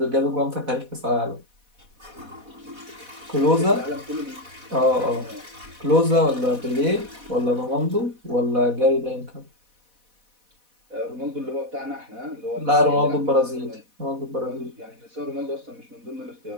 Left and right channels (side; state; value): left; late; 4.1 ms